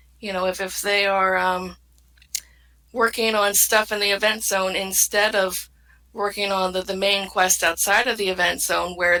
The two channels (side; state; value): both; identical; correlation 1.00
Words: if they are working on stuff in the event zone instead of working on the main quest outside of the event zone, where